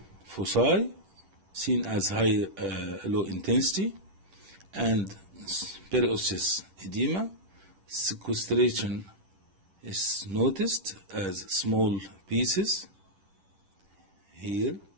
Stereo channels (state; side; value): late; left; 10 ms